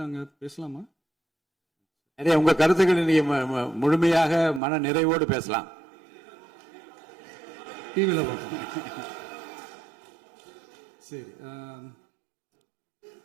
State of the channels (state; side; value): drops out; left; at 4.6 s